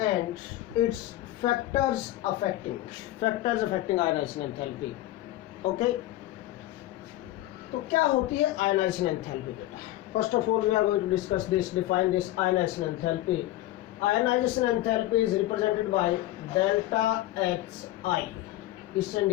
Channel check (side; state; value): right; quieter; 15.6 dB